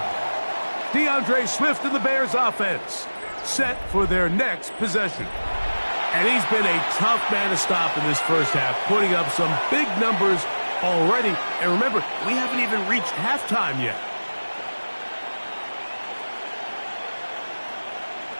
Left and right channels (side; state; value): both; inverted; correlation -1.00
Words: DeAndre Swift and the Bears offense set for their next possession. And he's been a tough man to stop in this first half, putting up some big numbers already. And remember, we haven't even reached halftime yet.